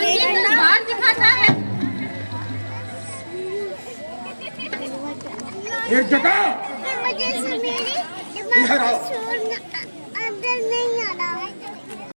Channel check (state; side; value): inverted; both; correlation -1.00